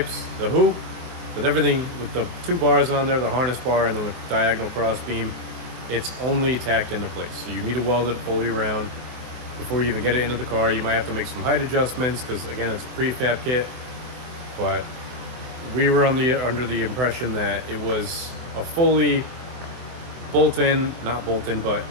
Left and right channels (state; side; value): late; left; 23 ms